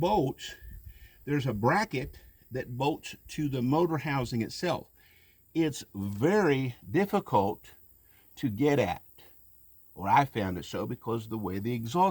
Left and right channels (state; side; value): identical; both; correlation 1.00